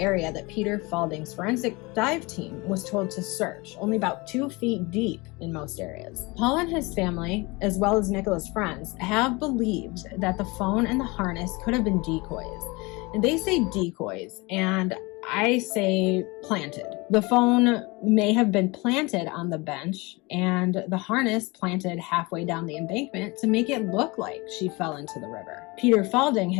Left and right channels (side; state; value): right; quieter; 25.1 dB